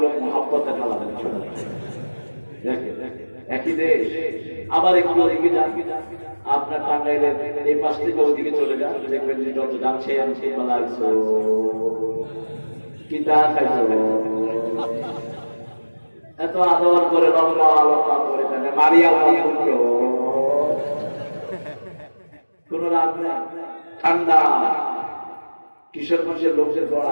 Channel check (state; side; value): inverted; both; correlation -1.00